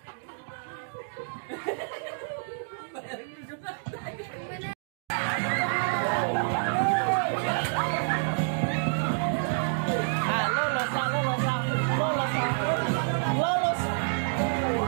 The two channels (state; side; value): silent; left; digital silence